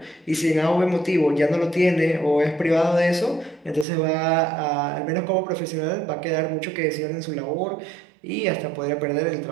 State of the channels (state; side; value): drops out; left; at 3.9 s